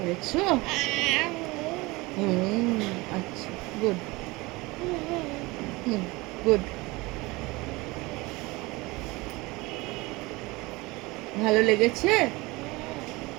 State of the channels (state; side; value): quieter; left; 22.9 dB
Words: হুম, আচ্ছা, গুড। হুম, গুড। ভালো লেগেছে?